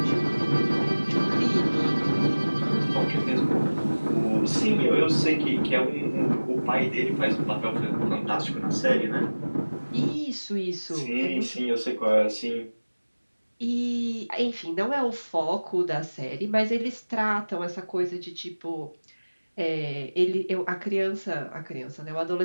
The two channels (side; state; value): both; inverted; correlation -1.00